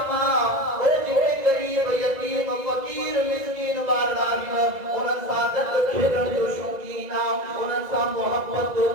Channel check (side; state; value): left; late; 2.0 ms